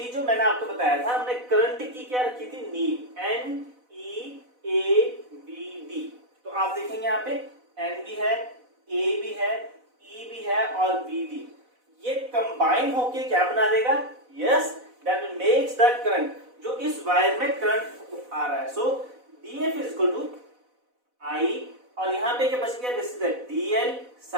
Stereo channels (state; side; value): late; left; 4.0 ms